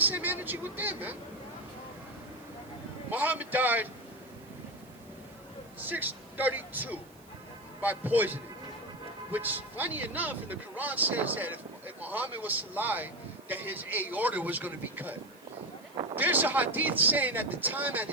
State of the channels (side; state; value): right; noise; hiss, 27 dB below the sound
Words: energy with them, man. Muhammad died 632 by poisoning. Which, funny enough, in the Quran says that if Muhammad was to lie, that his aorta was going to be cut. There's a hadith saying at the time at